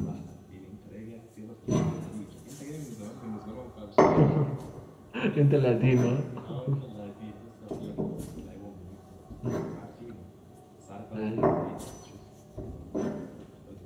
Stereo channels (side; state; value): both; identical; correlation 1.00